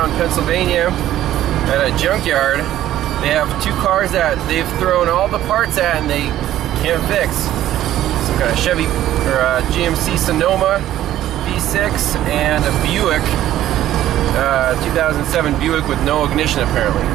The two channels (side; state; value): left; quieter; 13.0 dB